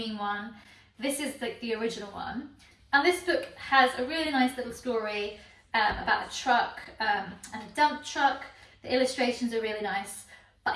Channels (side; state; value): both; identical; correlation 1.00